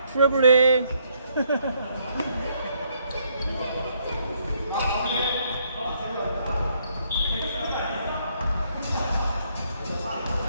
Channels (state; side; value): inverted; both; correlation -0.71